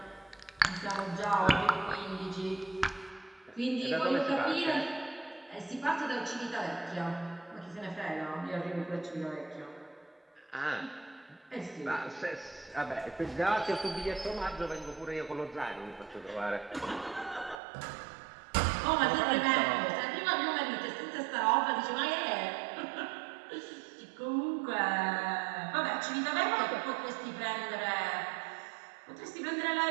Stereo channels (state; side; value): drops out; left; at 17.6 s